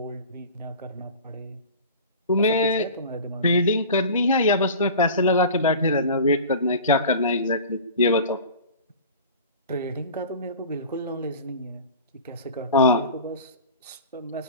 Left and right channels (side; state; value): both; inverted; correlation -0.38